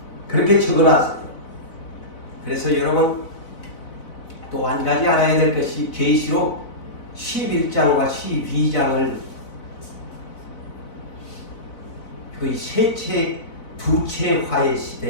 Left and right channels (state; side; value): late; right; 4.0 ms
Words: 그렇게 적어놨어요. 그래서 여러분 또 한 가지 알아야 될 것이 계시록 11장과 12장을 거의 두채 화의